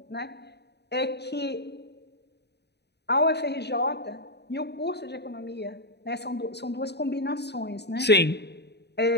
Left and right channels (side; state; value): right; late; 0.49 ms